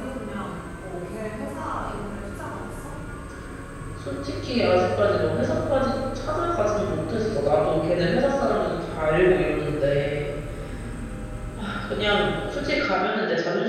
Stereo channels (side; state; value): both; identical; correlation 1.00